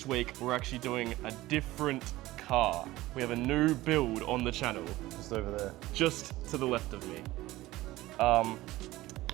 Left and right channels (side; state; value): left; quieter; 17.6 dB